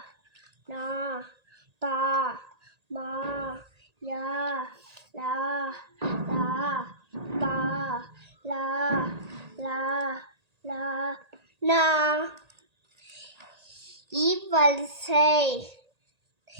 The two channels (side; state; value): left; late; 1.8 ms